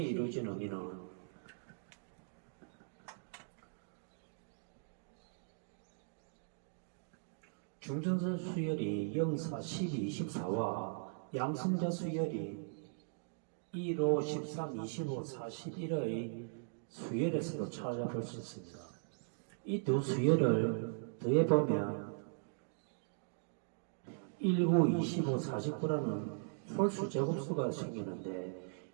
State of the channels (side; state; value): left; silent; digital silence